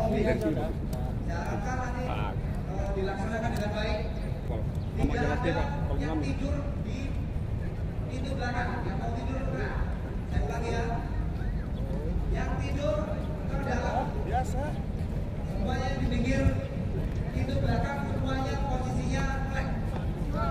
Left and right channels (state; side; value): identical; both; correlation 1.00